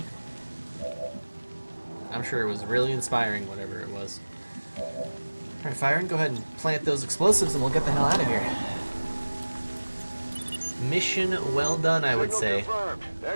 I'm sure it was really inspiring, whatever it was. Alright, Firen, go ahead and plant those explosives and we'll get the hell out of here. Mission well done, I would say. Confirmed.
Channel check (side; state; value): both; inverted; correlation -1.00